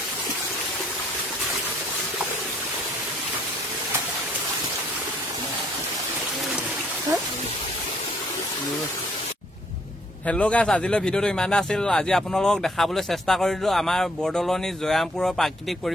হেল্ল' গাইছ আজিলৈ ভিডিঅ'টো ইমানে আছিল আজি আপোনালোকক দেখাবলৈ চেষ্টা কৰিলোঁ আমাৰ বৰদলনি জয়ামপুৰৰ প্ৰাকৃতিক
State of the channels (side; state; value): both; normal; correlation 0.66